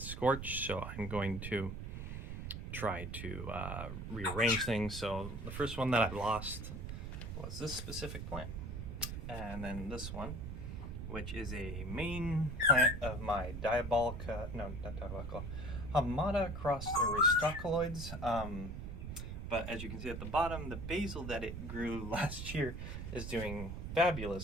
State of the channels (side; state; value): right; noise; rumble, 6 dB below the sound